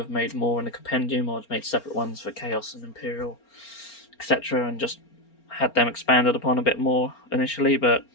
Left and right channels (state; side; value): late; right; 4.4 ms